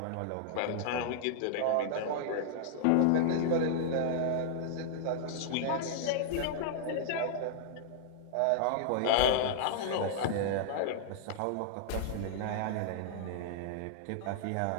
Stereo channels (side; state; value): both; different; correlation -0.01